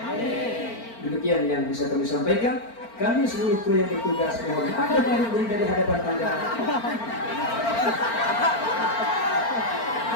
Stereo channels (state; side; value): late; right; 4.4 ms